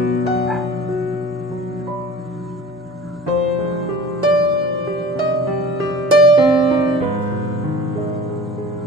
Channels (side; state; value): both; normal; correlation 0.41